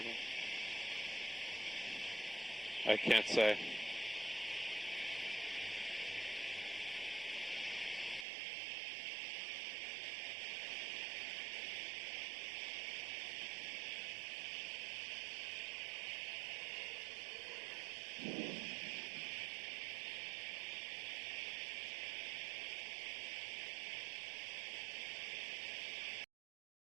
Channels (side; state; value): left; drops out; at 8.2 s